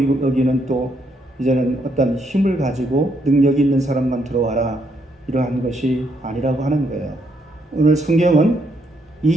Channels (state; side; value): normal; both; correlation 0.74